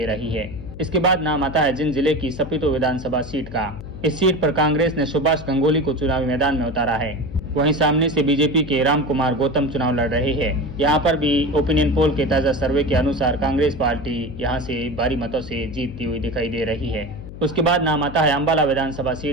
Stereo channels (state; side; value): noise; left; hum, 13 dB below the sound